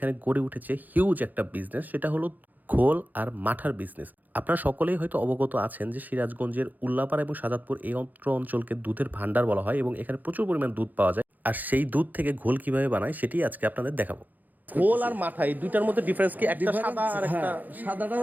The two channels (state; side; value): late; left; 0.083 ms